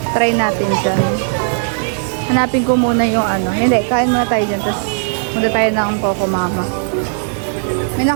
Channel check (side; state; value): left; silent; digital silence